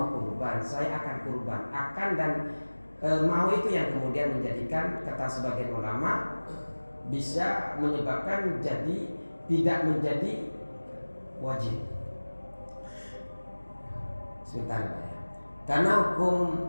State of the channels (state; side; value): inverted; both; correlation -1.00